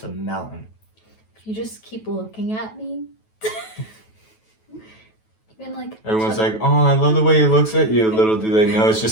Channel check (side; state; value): right; late; 9.2 ms